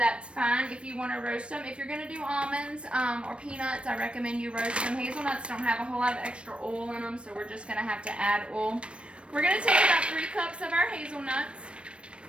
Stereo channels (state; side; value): late; left; 0.059 ms